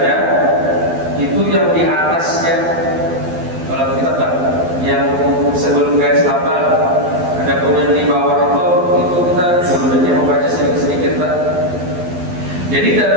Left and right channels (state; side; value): late; left; 12 ms